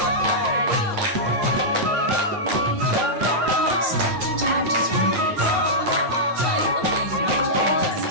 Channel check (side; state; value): left; late; 9.4 ms